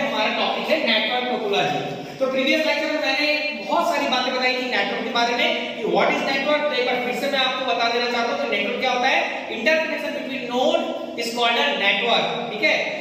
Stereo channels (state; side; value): identical; both; correlation 1.00